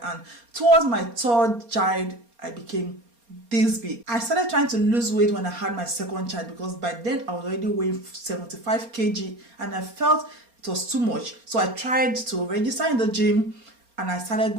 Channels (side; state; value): left; late; 4.3 ms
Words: and towards my third child, I became this big. I started trying to lose weight when I had my second child because by then I was already weighing 75 kg and I felt it was too much. So I tried to register in the gym and I started